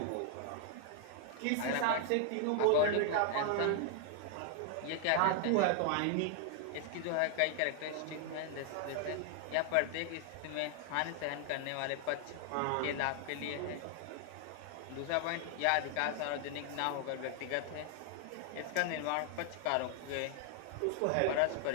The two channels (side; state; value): both; different; correlation 0.00